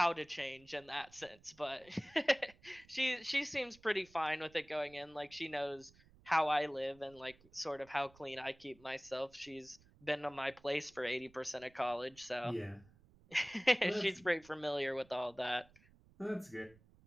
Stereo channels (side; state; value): right; noise; rumble, 26 dB below the sound